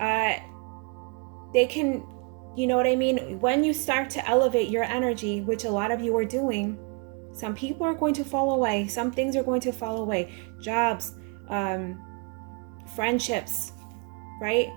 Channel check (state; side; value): quieter; left; 34.3 dB